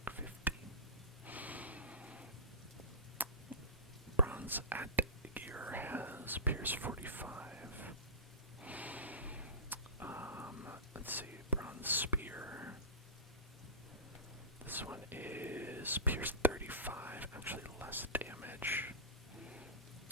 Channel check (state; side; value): normal; both; correlation -0.17